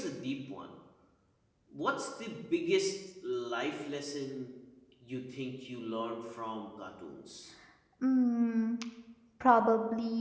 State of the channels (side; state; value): both; identical; correlation 1.00